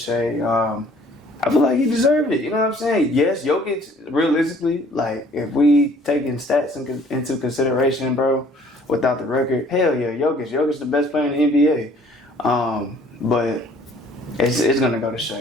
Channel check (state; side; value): normal; both; correlation 0.56